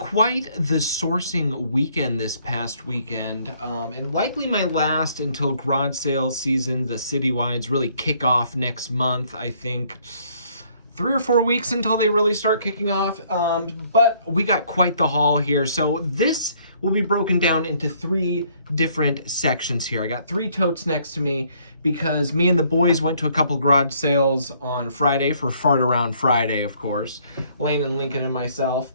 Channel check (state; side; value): inverted; both; correlation -0.64